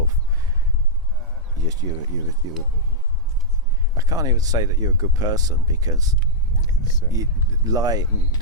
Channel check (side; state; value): both; normal; correlation -0.07